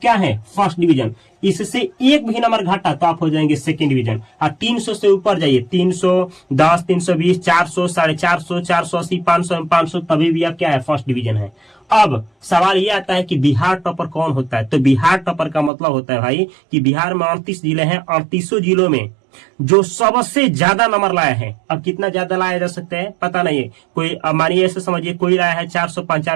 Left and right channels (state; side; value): drops out; left; at 15.7 s